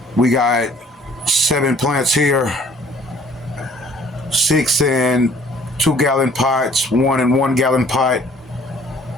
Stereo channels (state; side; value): normal; both; correlation 0.56